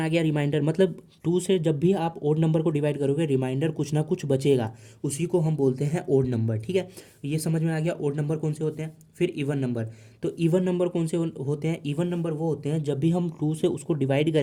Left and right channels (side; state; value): both; identical; correlation 1.00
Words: गया रिमाइंडर। मतलब 2 से जब भी आप ओड नंबर को डिवाइड करोगे रिमाइंडर कुछ ना कुछ बचेगा, उसी को हम बोलते हैं ओड नंबर, ठीक है। ये समझ में आ गया ओड नंबर कौन से होते हैं। फिर इवन नंबर, तो इवन नंबर कौन से होते हैं, इवन नंबर वो होते हैं जब भी हम 2 से उसको डिवाइड